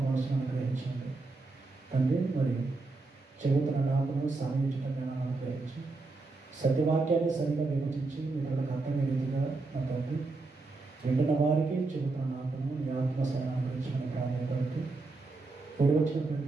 మనసును అనుగ్రహించండి తండ్రి. మరి చెబుతున్న నాకును సాధించడం అనుగ్రహించి సత్యవాక్యాన్ని సరిగ్గా విభజించి ఇతరులకు అర్థమయ్యే రీతిగా నా తండ్రి వింటున్న వారికి చెబుతున్న నాకును నీ ఆత్మ సహాయం అనుగ్రహించమని ప్రాధాన్యపడుతూ కూడి వచ్చిన ప్రతి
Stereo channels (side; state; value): left; quieter; 3.5 dB